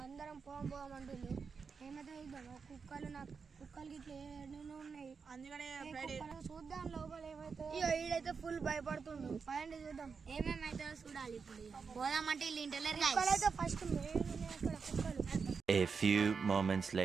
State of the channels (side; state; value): left; quieter; 5.5 dB